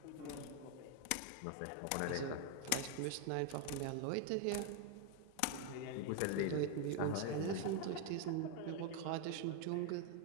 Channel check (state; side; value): different; both; correlation 0.00